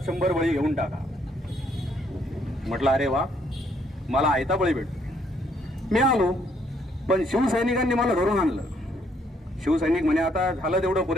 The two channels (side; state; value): both; normal; correlation 0.69